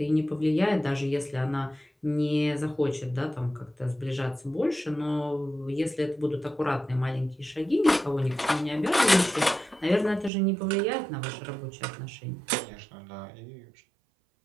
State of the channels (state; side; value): drops out; left; at 10.3 s